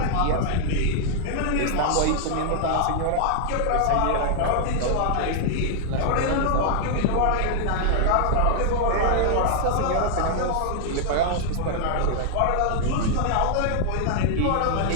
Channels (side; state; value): both; different; correlation 0.00